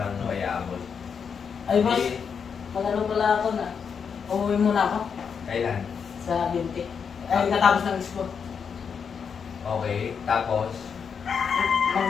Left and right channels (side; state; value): right; quieter; 6.5 dB